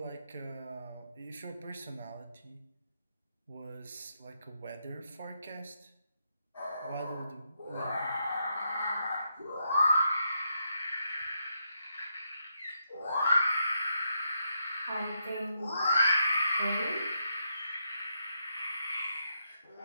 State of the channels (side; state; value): both; inverted; correlation -0.81